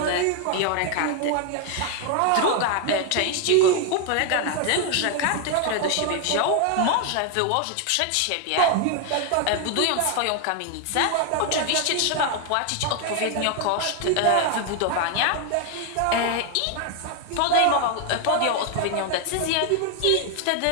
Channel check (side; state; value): both; different; correlation 0.01